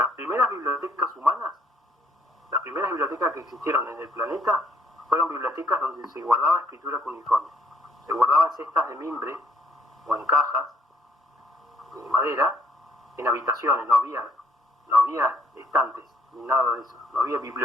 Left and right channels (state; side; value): normal; both; correlation 0.67